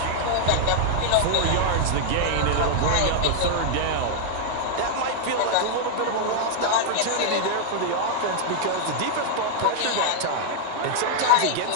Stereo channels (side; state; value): both; different; correlation -0.01